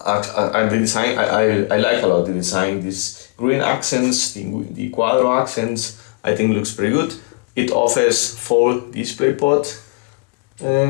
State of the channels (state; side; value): quieter; right; 31.0 dB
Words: the design, I like a lot the design. These green accents, the Quadro accents, I think looks pretty good. It offers 4 DisplayPort